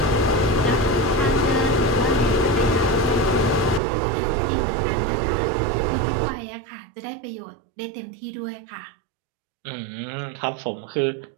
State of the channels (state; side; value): drops out; left; at 3.8 s